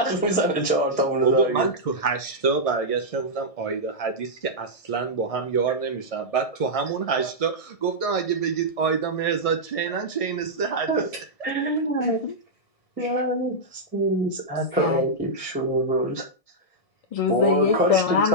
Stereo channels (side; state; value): right; late; 1.6 ms